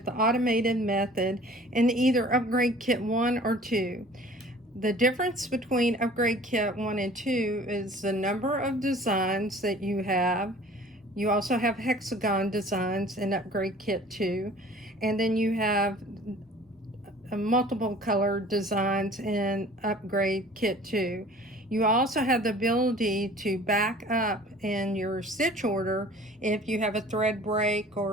the automated method in either upgrade kit 1 or 2. The difference between upgrade kit 1 and 2 is the number of designs that you have. You also have hexagon designs in upgrade kit 2, and then you have multiple color designs in upgrade kit 2. You also have the ability to back up in your stitch order if you have a thread break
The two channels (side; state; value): both; normal; correlation 0.48